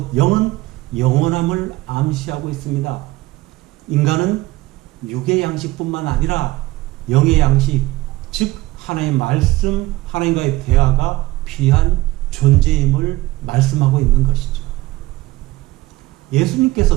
영은 영원함을 암시하고 있습니다. 인간은 육의 양식뿐만 아니라 영의 양식, 즉 하나님의 말씀, 하나님과의 대화가 필요한 존재임을 말씀하고 있는 것이죠.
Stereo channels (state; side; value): quieter; left; 18.6 dB